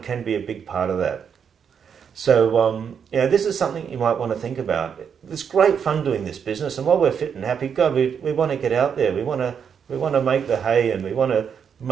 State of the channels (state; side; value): quieter; left; 7.3 dB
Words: can be a big part of that. So this is something you might want to think about. It's great fun doing this business, and while we're fit and happy, God, we want to get out there. We want to make the hay, and we want to